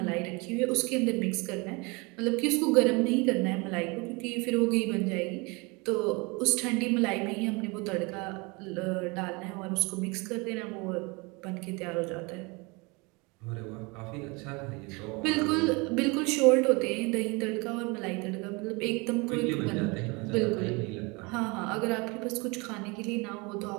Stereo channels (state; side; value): quieter; left; 27.7 dB